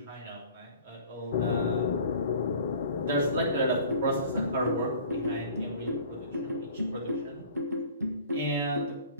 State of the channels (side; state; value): both; inverted; correlation -0.47